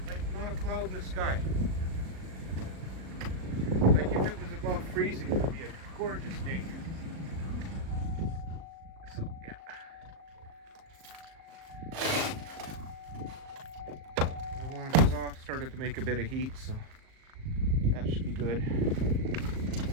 Like not a cloud in the sky. Like if it was above freezing, it would be a gorgeous day. So yeah. The launch is off, started to make a bit of heat, so that should be good.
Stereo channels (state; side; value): late; left; 38 ms